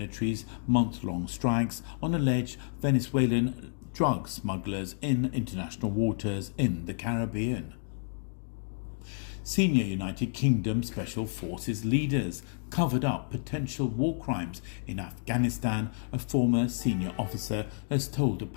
month-long strikes on alleged Venezuelan drug smugglers in international waters in the Caribbean. Senior United Kingdom Special Forces leaders covered up potential war crimes in Afghanistan, a former senior officer has told a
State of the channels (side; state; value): right; silent; digital silence